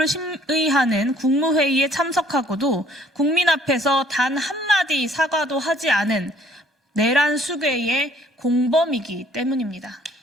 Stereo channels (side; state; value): both; normal; correlation 0.60